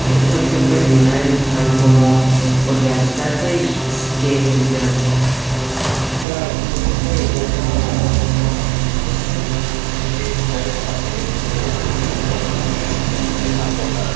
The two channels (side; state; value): left; drops out; at 6.2 s